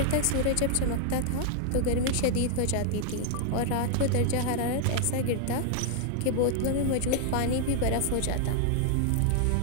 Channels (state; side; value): different; both; correlation 0.00